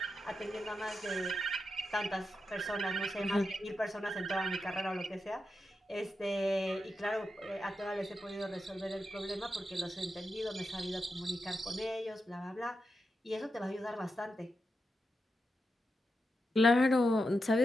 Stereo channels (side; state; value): both; normal; correlation 0.87